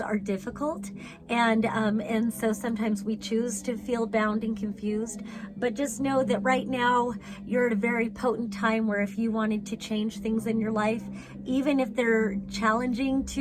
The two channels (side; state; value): both; identical; correlation 1.00